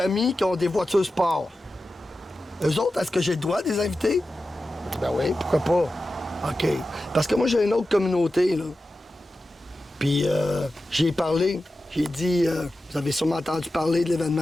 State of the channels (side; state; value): both; normal; correlation 0.93